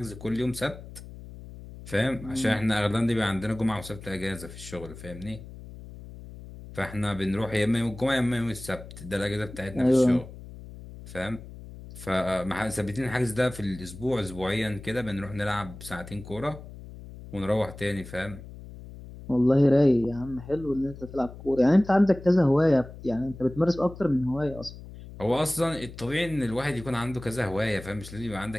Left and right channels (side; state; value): left; noise; hum, 15 dB below the sound